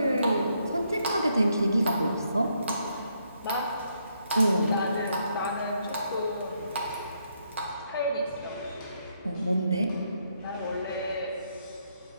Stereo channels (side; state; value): both; inverted; correlation -0.75